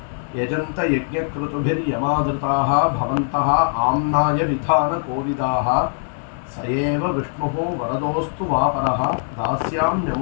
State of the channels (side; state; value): right; silent; digital silence